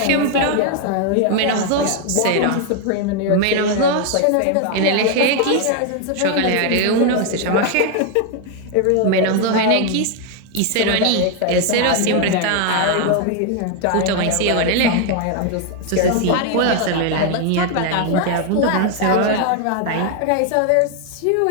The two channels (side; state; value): both; different; correlation 0.01